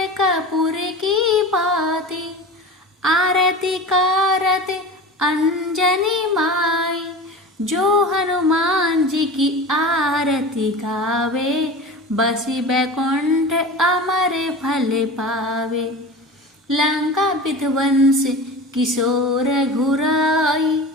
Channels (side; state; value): both; normal; correlation 0.33